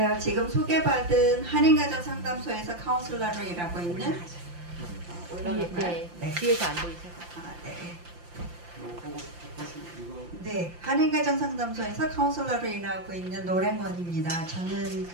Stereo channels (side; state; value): left; late; 5.8 ms